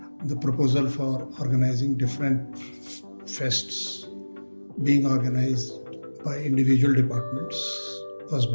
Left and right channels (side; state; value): both; inverted; correlation -1.00